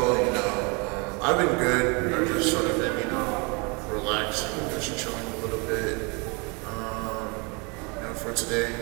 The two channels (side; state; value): left; quieter; 30.9 dB